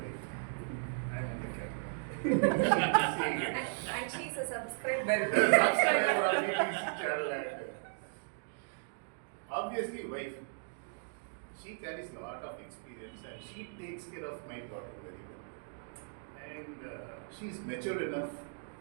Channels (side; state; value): left; silent; digital silence